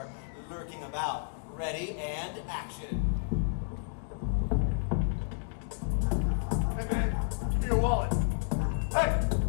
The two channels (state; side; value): silent; right; digital silence